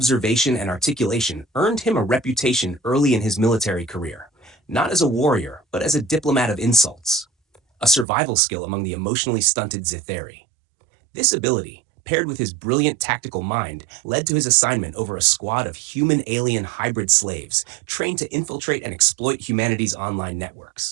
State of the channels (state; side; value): drops out; left; at 8.1 s